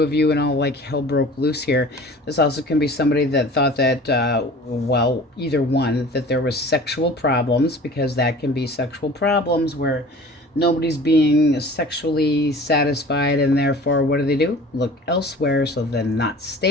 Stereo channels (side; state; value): both; normal; correlation 0.43